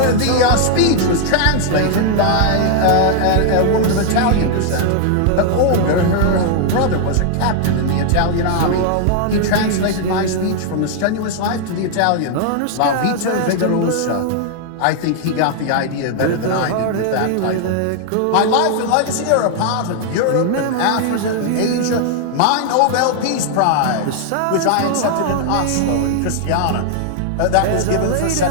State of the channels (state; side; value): different; both; correlation 0.00